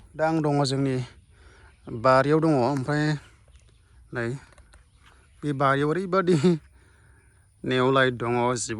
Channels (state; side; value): identical; both; correlation 1.00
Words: दा आं दङ जोंनि बारियाव दङ ओमफ्राय नै बे बारियाव ओरैबादि नेवलाय दङ